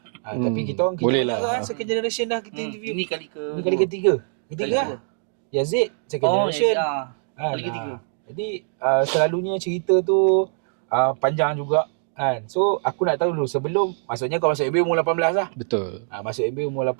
Tapi kita orang boleh banyak lah. kan second generation dah kita interview. Ini kali ketiga. Ketiga. Yazid second generation. Kali ketiga. Jadi selalunya cerita tu panjang juga kan. So aku nak tahu dulu, sebelum maksudnya kau masuk MBA umur 18 lah. Betul. Masuk MBA umur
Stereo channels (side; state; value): left; silent; 63 dB below the other